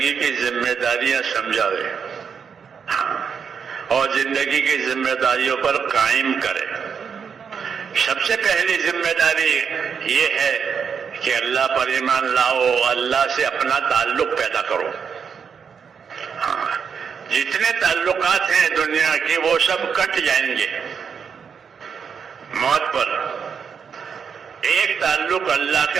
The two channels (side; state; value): left; quieter; 6.6 dB